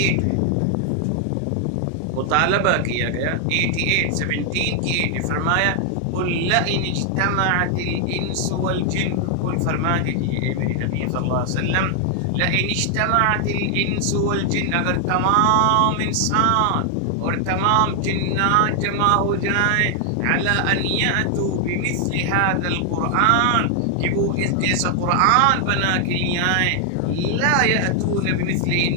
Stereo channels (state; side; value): different; both; correlation 0.00